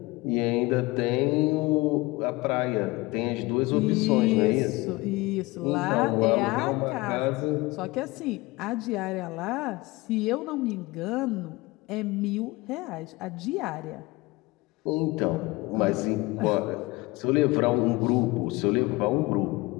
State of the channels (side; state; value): right; quieter; 22.2 dB